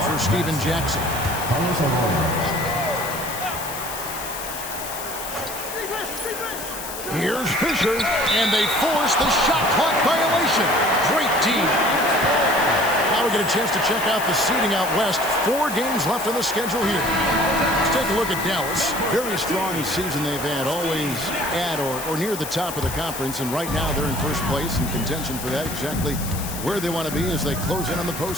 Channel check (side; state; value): left; noise; hiss, 9 dB below the sound